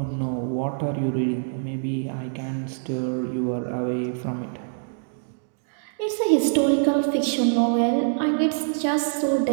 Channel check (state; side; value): silent; left; digital silence